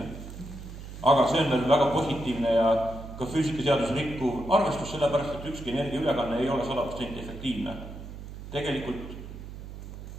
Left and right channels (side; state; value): right; noise; hum, 11 dB below the sound